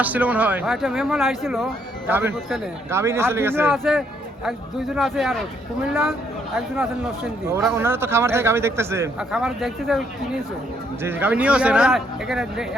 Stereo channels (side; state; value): both; normal; correlation 0.71